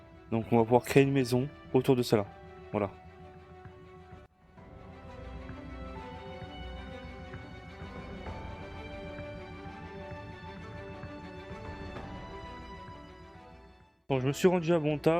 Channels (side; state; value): both; identical; correlation 1.00